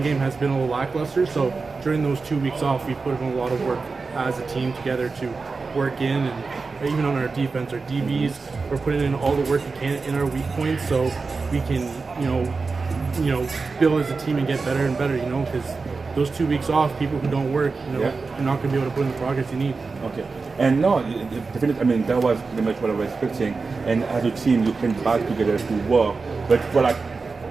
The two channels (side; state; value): left; quieter; 4.3 dB